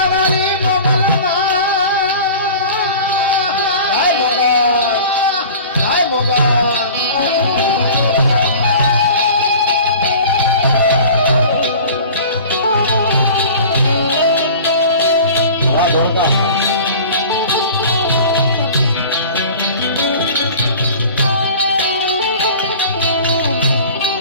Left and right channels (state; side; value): inverted; both; correlation -0.40